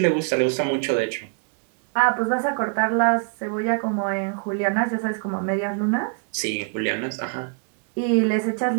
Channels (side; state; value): left; quieter; 37.7 dB